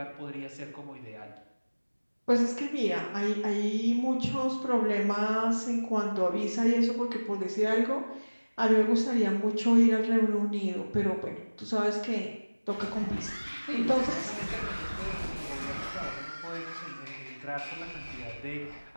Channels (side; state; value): both; inverted; correlation -1.00